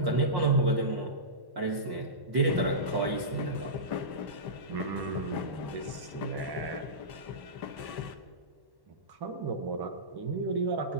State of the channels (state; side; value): late; left; 1.1 ms